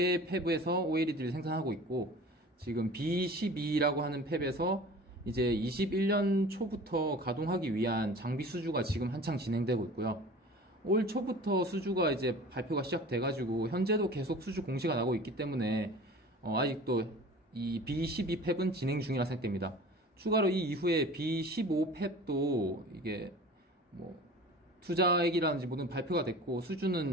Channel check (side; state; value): both; normal; correlation 0.41